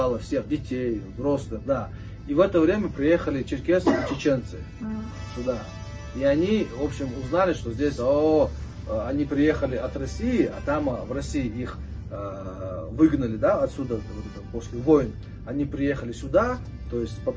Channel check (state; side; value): identical; both; correlation 1.00